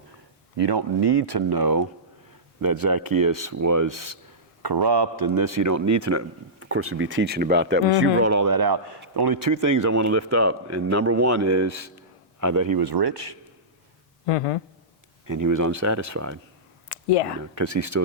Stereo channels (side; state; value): both; normal; correlation -0.17